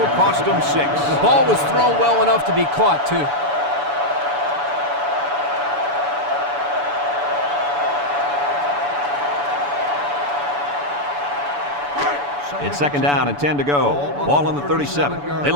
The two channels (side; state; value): left; late; 7.0 ms